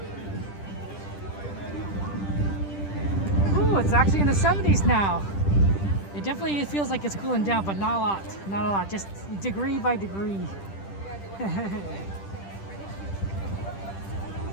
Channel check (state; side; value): late; right; 10 ms